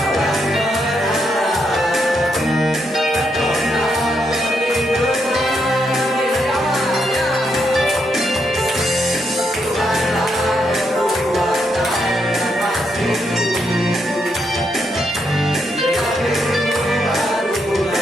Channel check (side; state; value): both; normal; correlation 0.79